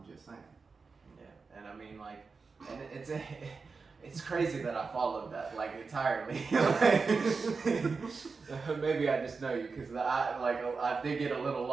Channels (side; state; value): left; quieter; 4.6 dB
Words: just saying. Yeah, and I mean, like, and it's crazy that I followed that like entirely. Maybe I just know you because I did get a little